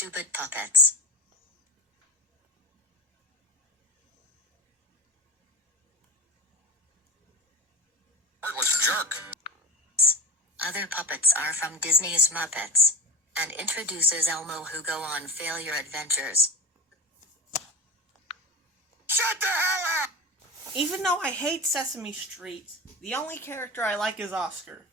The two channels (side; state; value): both; normal; correlation 0.22